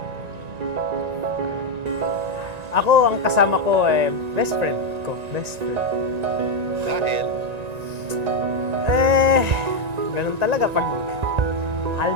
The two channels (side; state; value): left; late; 1.9 ms